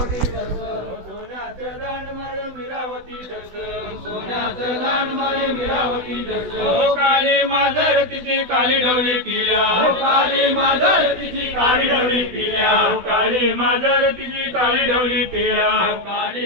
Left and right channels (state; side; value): late; left; 16 ms